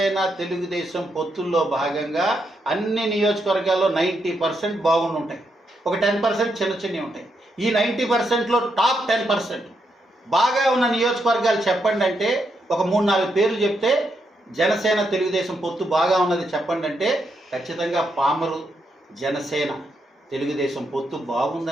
తెలుగుదేశం పొత్తుల్లో భాగంగా అన్ని నియోజకవర్గాల్లో 90% బాగుండి ఉంటాయి. ఒక 10% చిన్నవి ఉంటాయి. ఈ 90%లో టాప్ 10% బాగా ఉన్న నియోజకవర్గాలు చెప్పండి అంటే ఒక 3-4 పేర్లు చెప్తే జనసేన తెలుగుదేశం పొత్తు బాగా ఉన్నది చెప్పండి అంటే ఖచ్చితంగా పామరు జనసేన తెలుగుదేశం పొత్తు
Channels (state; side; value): normal; both; correlation 0.80